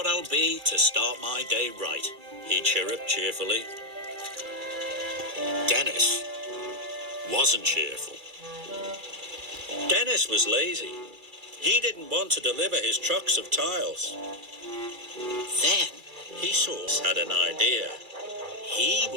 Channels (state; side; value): late; left; 2.3 ms